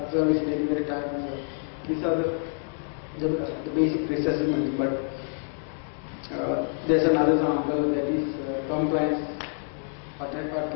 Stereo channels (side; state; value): right; silent; 58 dB below the other